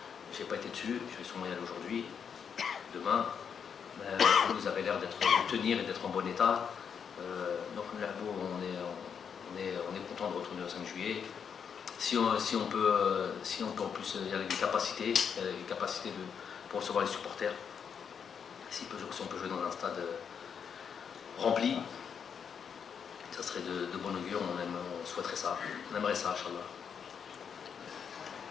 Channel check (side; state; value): right; quieter; 7.1 dB